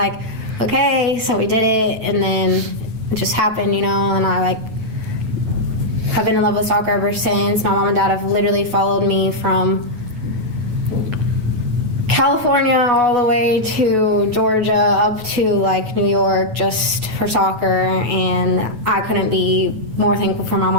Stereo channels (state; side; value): late; left; 9.2 ms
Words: okay, so we did it, and then it just happened, and I have been in love with soccer ever since. My mom and dad have literally followed me from California all the way to Georgia up to like New York just for soccer, and I couldn't be more thankful for my